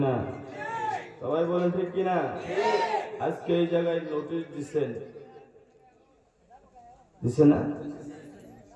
সবাই বলেন ঠিক কিনা? আজকে এই জায়গায় নোটিশ দিছে না?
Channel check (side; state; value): both; identical; correlation 1.00